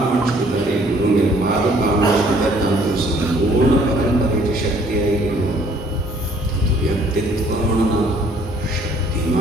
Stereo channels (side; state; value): both; normal; correlation 0.60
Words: कितें गुरुंगेर पादुका म्हणजे तातूंत संपूर्ण परंपरेची शक्ती आयली. व्यक्तित्व म्हणून शक्ती